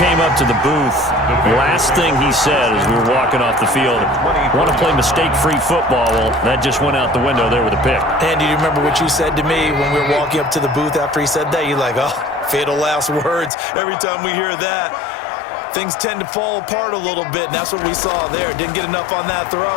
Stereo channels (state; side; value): drops out; right; at 13.5 s